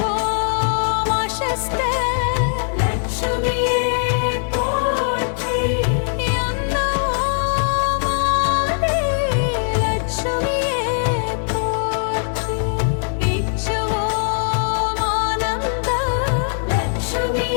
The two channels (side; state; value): right; silent; digital silence